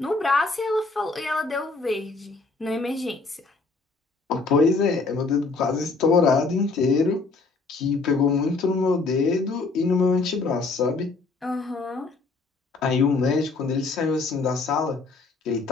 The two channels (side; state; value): right; quieter; 3.9 dB